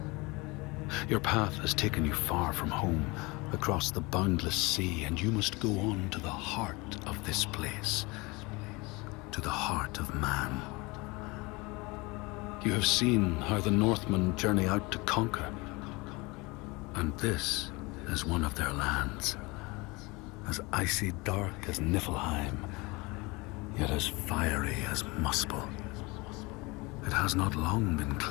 Your path has taken you far from home, across the boundless sea, and you must go on to the heart of this place, to the heart of man. You have seen how the Northmen journey out to conquer, and this is one of their lands, as icy dark as Niflheim, yet as fiery as Muspel. It has not long been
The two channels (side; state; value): right; quieter; 25.1 dB